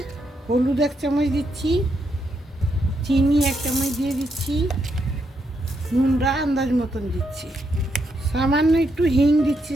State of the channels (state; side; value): normal; both; correlation 0.79